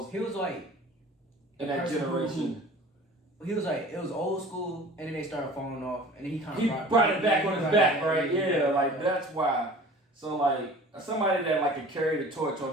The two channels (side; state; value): both; normal; correlation 0.44